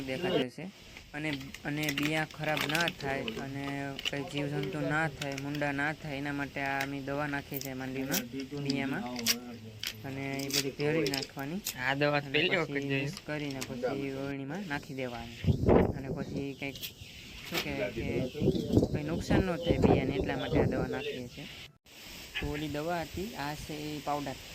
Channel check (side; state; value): both; identical; correlation 1.00